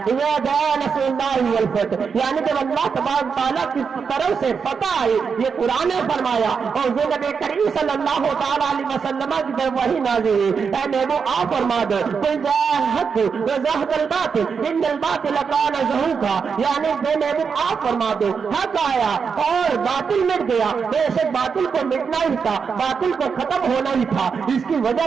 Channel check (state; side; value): quieter; left; 5.9 dB